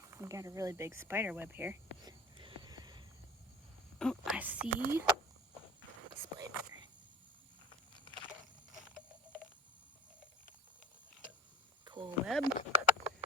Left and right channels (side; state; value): both; normal; correlation 0.42